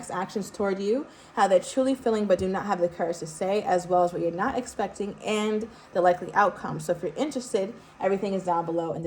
actions toward you, how they're truly feeling but do not have the courage to say, as well as what you're not expecting and the likely outcome. So if you're interested, everything is down below in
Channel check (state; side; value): identical; both; correlation 1.00